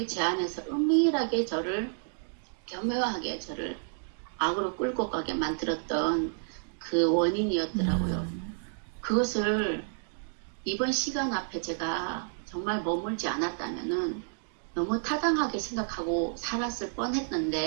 제 안에서 은밀하게 저를 교묘하게 저를 악으로 끌고 가게 만들었던 그 원인이었더라고요. 그것을 이번 시간 앞에 제가 정말 머물지 않았다면은 너무 타당하게 생각하고 살았을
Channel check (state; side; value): silent; left; digital silence